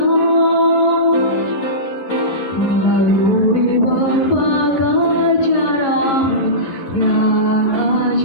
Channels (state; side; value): late; right; 11 ms